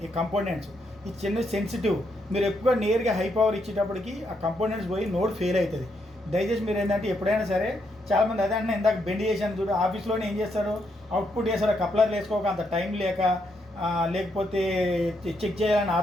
ఈ కంపోనెంట్స్. ఈ చిన్న సెన్సిటివ్ మీరు ఎక్కువ నేరుగా హై పవర్ ఇచ్చేటప్పటికి ఆ కంపోనెంట్స్ పోయి నోడ్ ఫెయిల్ అవుతుంది. దయచేసి మీరు ఏంటంటే ఎప్పుడైనా సరే చాలామంది అదే అంటే ఇందాక బెండ్ చేశాను చూడు, ఆఫీస్లోనే ఏం చేస్తారు, అవుట్పుట్ చేస్తారు కప్లర్ వేసుకోక అంత టైం లేక లేకపోతే చెక్ చేయాలని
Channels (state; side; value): normal; both; correlation 0.78